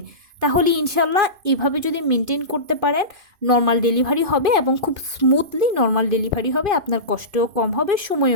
তাহলে ইনশাল্লাহ এভাবে যদি মেনটেন করতে পারেন নর্মাল ডেলিভারি হবে এবং খুব স্মুথলি নর্মাল ডেলিভারি হবে, আপনার কষ্টও কম হবে,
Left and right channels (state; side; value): late; left; 2.5 ms